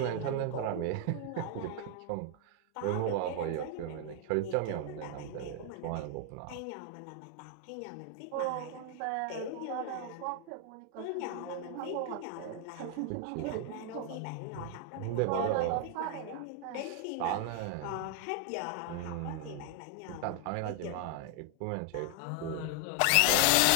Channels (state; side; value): different; both; correlation 0.00